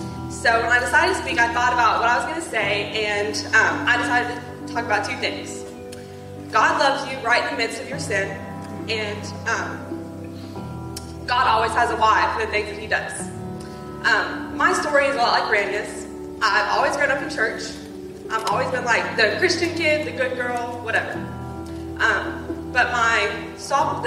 so when I decided to speak, I thought about what I was going to say, and I decided to talk about two things. God loves you right in the midst of your sin, and God always has a why for the things that he does. My story is a lot like Brandy's. I've always grown up in church. I've always been like the Christian kid, the good girl, whatever. But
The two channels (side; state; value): both; identical; correlation 1.00